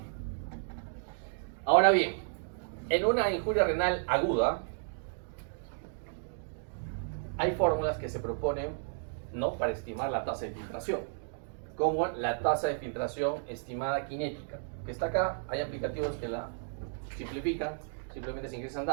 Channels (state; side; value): silent; left; digital silence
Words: Ahora bien, en una injuria renal aguda, hay fórmulas que se proponen, ¿no?, para estimar la tasa de filtración, como la tasa de filtración estimada cinética, que está acá. Hay aplicativos que la simplifican, simplemente se ingresan